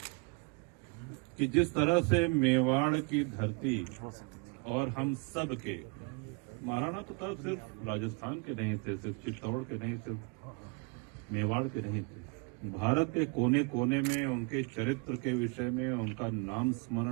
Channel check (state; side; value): quieter; left; 32.3 dB